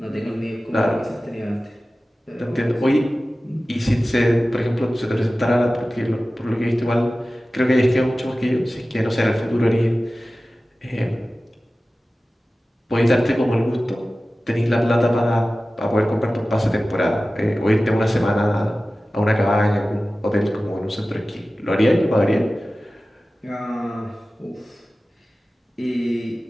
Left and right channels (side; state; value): both; normal; correlation 0.96